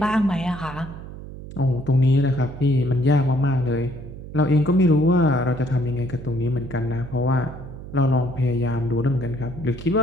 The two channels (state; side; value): noise; right; hum, 13 dB below the sound